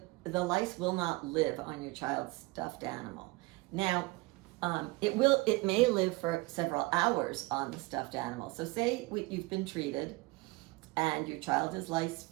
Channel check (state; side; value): quieter; left; 23.6 dB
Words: lice will not live on your child's stuffed animal. Now, it may live for several hours on the stuffed animal. So say you've been treated and your child is lice